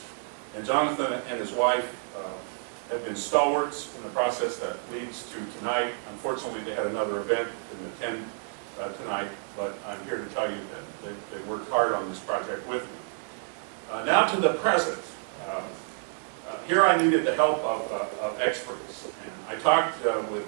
And Jonathan and his wife have been stalwarts in the process that leads to tonight. Unfortunately, they had another event in attend tonight, but I'm here to tell you that they worked hard on this project with me. Now to the present. Here I needed the help of experts. And I talked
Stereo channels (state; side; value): silent; left; 59 dB below the other